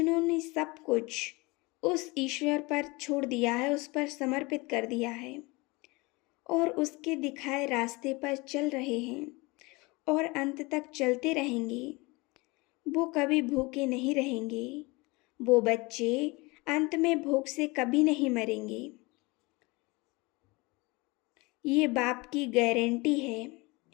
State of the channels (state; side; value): quieter; right; 24.9 dB